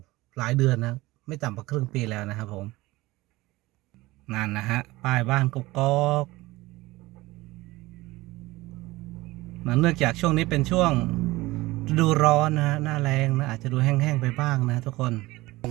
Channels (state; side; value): quieter; left; 19.7 dB